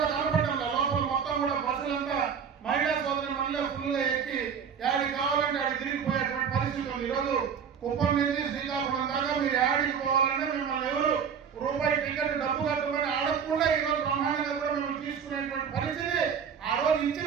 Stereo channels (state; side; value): quieter; left; 7.2 dB